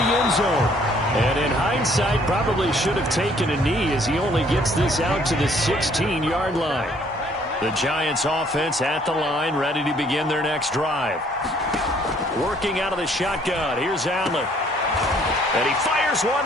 end zone. And in hindsight, probably should have taken a knee as he only gets this out to the 16-yard line. The Giants offense at the line, ready to begin their next drive. Working out of the shotgun. Here's Allen. And he fires one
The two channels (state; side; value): normal; both; correlation 0.62